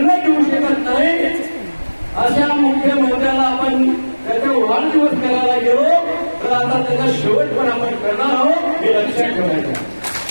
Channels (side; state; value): both; inverted; correlation -1.00